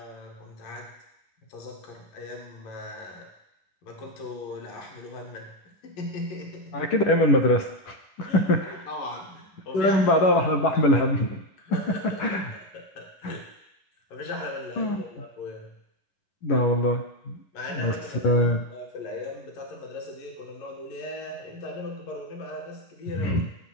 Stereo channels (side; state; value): right; late; 11 ms